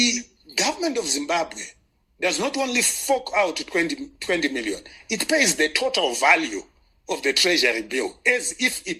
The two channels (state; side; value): identical; both; correlation 1.00